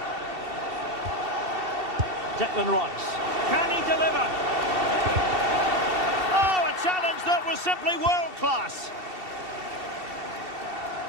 Declan Rice. Can he deliver? Oh, a challenge that was simply world-class.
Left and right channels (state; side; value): late; left; 2.7 ms